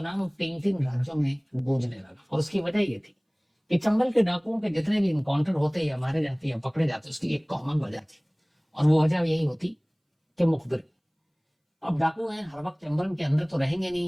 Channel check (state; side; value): identical; both; correlation 1.00